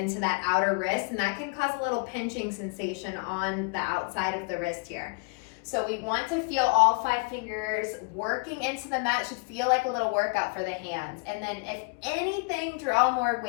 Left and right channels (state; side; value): quieter; right; 30.8 dB